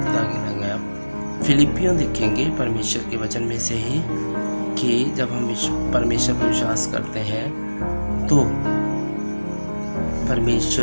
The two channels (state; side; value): inverted; both; correlation -1.00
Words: गिना गया। फिलिपियों देखेंगे परमेश्वर के वचन में से ही कि जब हम परमेश्वर पर विश्वास करते हैं तो